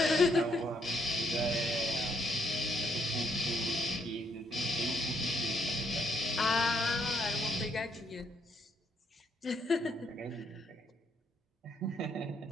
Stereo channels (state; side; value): normal; both; correlation 0.73